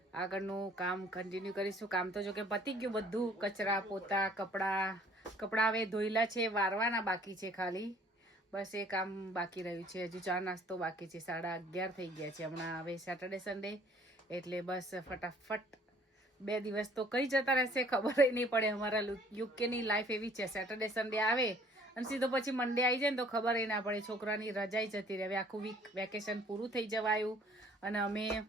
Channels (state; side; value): normal; both; correlation 0.57